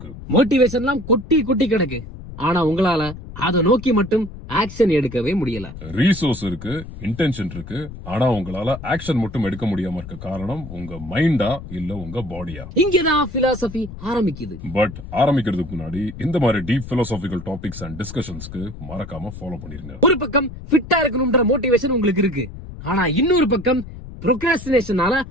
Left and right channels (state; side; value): noise; left; rumble, 12 dB below the sound